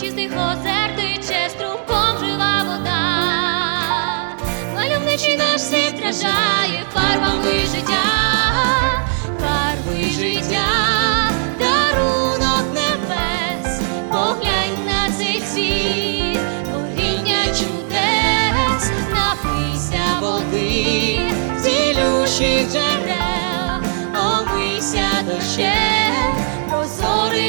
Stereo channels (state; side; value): silent; left; digital silence